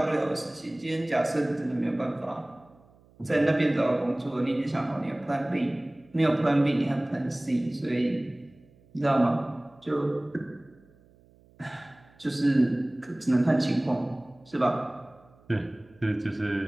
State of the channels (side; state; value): right; noise; hum, 29 dB below the sound